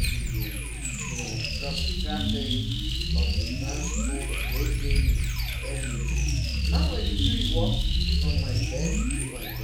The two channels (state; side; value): identical; both; correlation 1.00